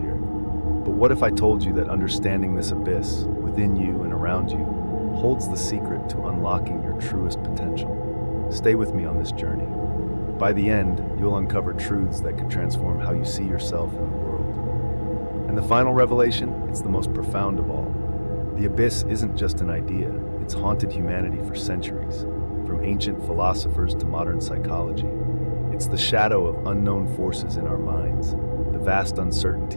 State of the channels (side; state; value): both; inverted; correlation -1.00